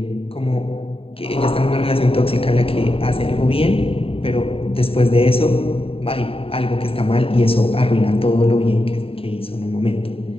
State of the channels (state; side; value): late; right; 0.27 ms